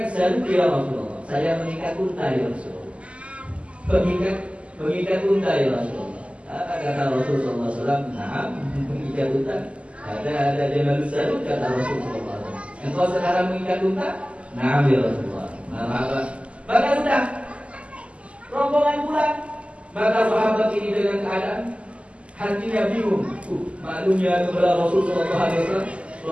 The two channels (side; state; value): left; late; 0.059 ms